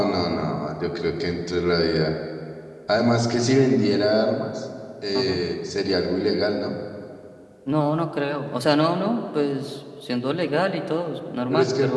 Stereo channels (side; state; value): both; identical; correlation 1.00